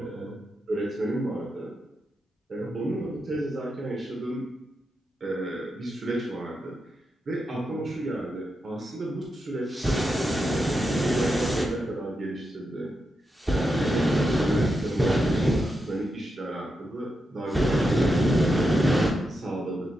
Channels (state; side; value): normal; both; correlation 0.86